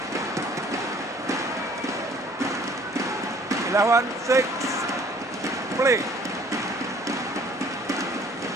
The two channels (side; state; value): both; normal; correlation 0.56